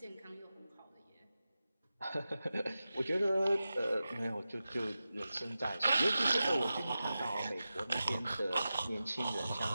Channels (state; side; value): inverted; both; correlation -0.93